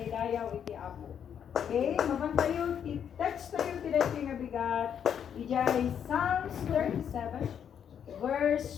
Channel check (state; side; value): quieter; right; 8.4 dB